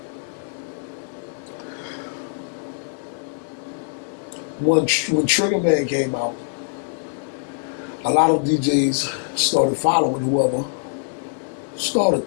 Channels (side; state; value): right; silent; 63 dB below the other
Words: When Trigger Man came out, a lot of DJs started following whoever started